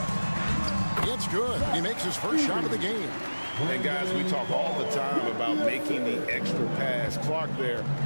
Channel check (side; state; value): both; inverted; correlation -1.00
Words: It's good. He makes his first shot of the game. And guys, we talk all the time about making the extra pass. Clark there